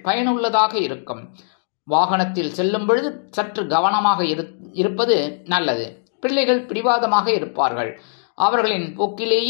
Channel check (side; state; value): right; silent; digital silence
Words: பயனுள்ளதாக இருக்கும். வாகனத்தில் செல்லும் பொழுது சற்று கவனமாக இருப்பது நல்லது. பிள்ளைகள் பிடிவாதமாக இருப்பார்கள். அவர்களின்